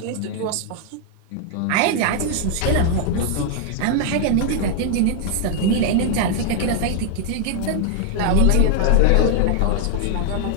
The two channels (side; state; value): both; different; correlation 0.00